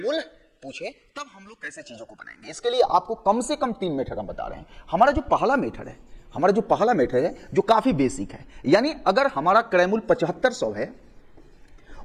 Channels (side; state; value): both; identical; correlation 1.00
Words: पूछे, तब हम लोग कैसे चीजों को बनाएंगे। इसके लिए आपको कम से कम 3 मेथड हम बता रहे हैं। हमारा जो पहला मेथड है, जो काफी बेसिक है, यानी अगर हमारा क्रैमुल 7500 है